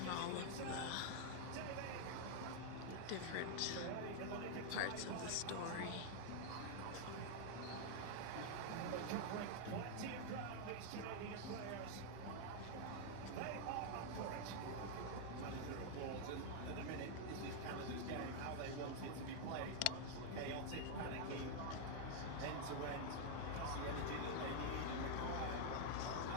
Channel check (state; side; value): different; both; correlation 0.00